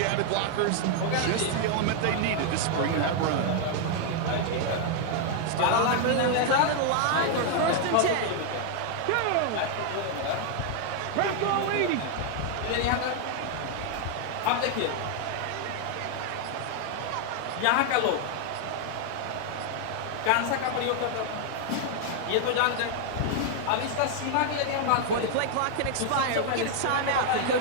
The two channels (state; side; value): different; both; correlation 0.00